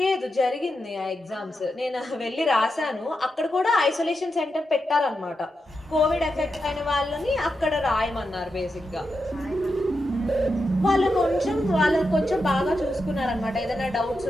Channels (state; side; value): normal; both; correlation 0.87